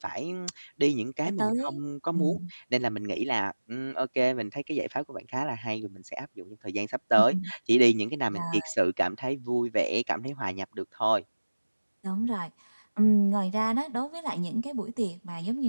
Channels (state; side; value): inverted; both; correlation -1.00